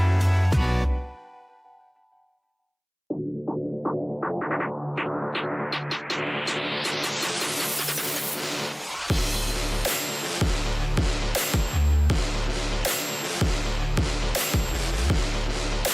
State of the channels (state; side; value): identical; both; correlation 1.00